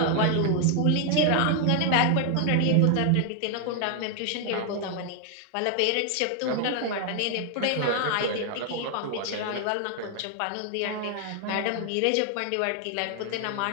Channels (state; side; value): different; both; correlation 0.00